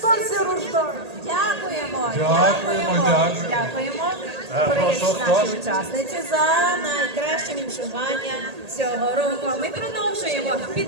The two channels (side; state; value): left; late; 1.8 ms